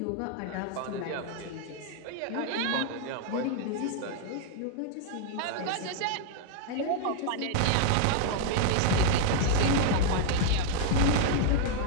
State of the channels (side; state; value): both; different; correlation 0.00